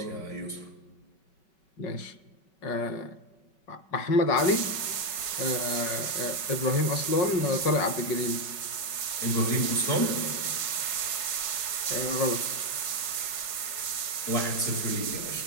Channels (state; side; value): late; right; 5.3 ms